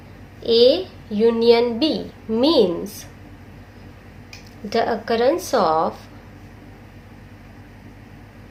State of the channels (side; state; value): both; identical; correlation 1.00